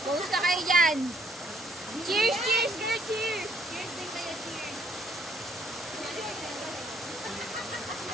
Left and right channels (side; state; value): both; normal; correlation 0.66